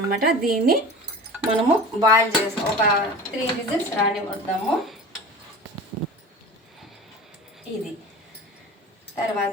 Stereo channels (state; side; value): normal; both; correlation 0.36